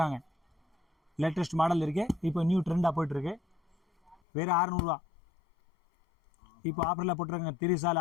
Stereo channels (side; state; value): right; drops out; at 4.2 s